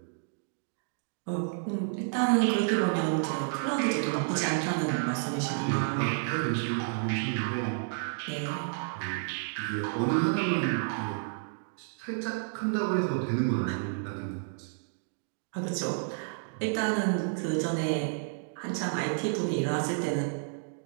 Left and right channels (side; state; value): left; silent; digital silence